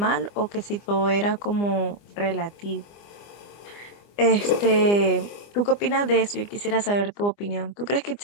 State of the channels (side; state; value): right; late; 25 ms